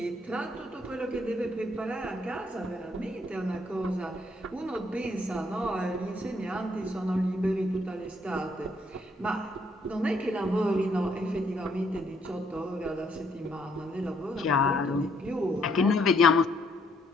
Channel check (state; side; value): normal; both; correlation 0.69